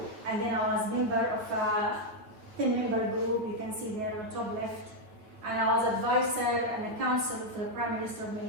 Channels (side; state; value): left; late; 9.4 ms